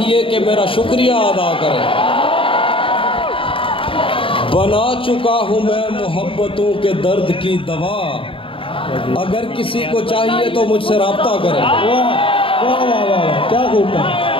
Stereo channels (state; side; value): late; right; 0.26 ms